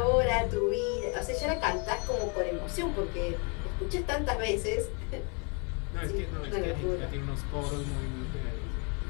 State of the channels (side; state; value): right; quieter; 35.4 dB